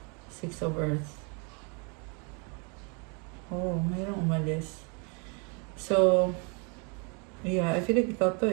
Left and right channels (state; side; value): quieter; left; 34.5 dB